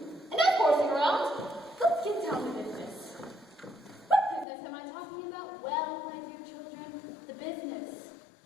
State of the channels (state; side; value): drops out; right; at 4.5 s